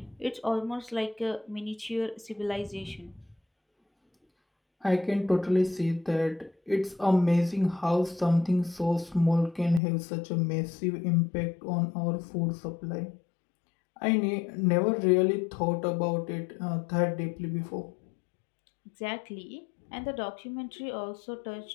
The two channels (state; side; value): drops out; right; at 9.8 s